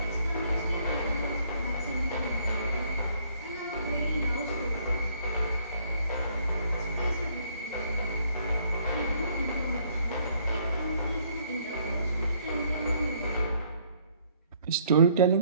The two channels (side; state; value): both; inverted; correlation -0.64